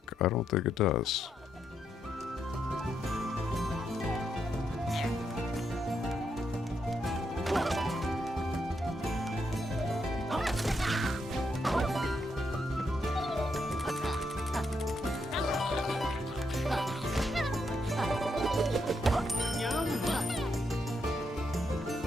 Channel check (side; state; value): both; normal; correlation 0.80